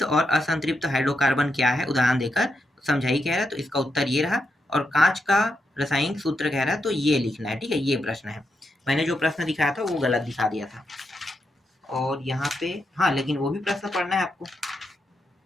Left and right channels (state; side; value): normal; both; correlation 0.83